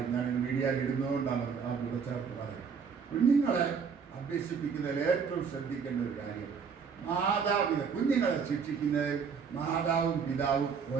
ഞാൻ മീഡിയയിൽ ഇടുന്നതുകൊണ്ടാണ് ആ കൂടച്ചേർത്ത് പറയുന്നത്. കുഞ്ഞുങ്ങളെ അഭ്യസിപ്പിക്കുന്നതിൽ ഏറ്റവും ശ്രദ്ധിക്കേണ്ട ഒരു കാര്യം, കുഞ്ഞുങ്ങളെ ശിക്ഷിക്കുന്നതിൽ മാതാവും പിതാവും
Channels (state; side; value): quieter; left; 6.2 dB